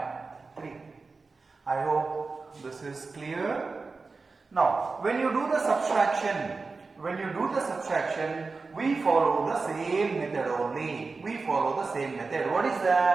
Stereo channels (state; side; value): quieter; left; 4.1 dB